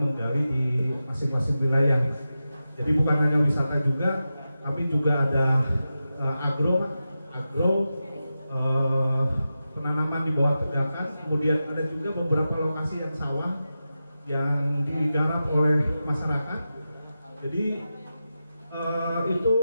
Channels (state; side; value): inverted; both; correlation -0.92